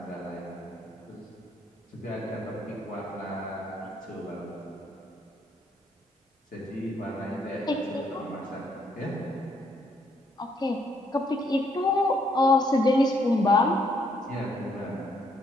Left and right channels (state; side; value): normal; both; correlation 0.70